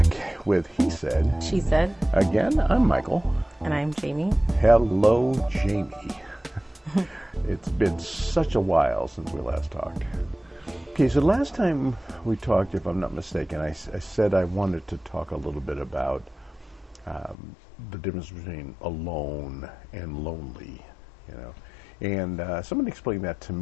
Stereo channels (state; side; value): drops out; right; at 17.4 s